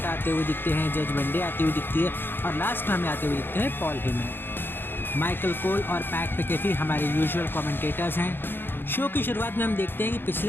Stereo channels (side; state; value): right; late; 0.10 ms